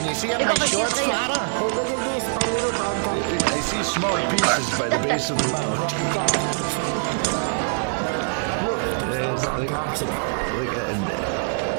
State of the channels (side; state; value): left; silent; 61 dB below the other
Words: you see up my shorts, Father? Oh, look at this, my little brown dog. I see small pieces by the base of the mount. Look, there's brown dogs. Look, and